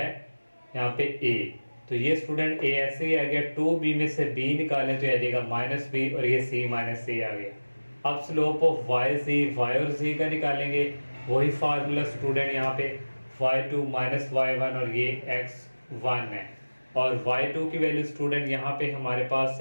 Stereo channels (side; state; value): both; inverted; correlation -1.00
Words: यहाँ पे a। तो ये स्टूडेंट a ऐसे ही आ गया, 2b में से b निकालें तो आ जाएगा माइनस b, और ये c माइनस c आ गया। अब स्लोप ऑफ y और z का निकालेंगे, वही फार्मूला स्टूडेंट यहाँ पे y2 माइनस y1 और ये x1 है, और y2 की वैल्यू स्टूडेंट यहाँ पे हमारे पास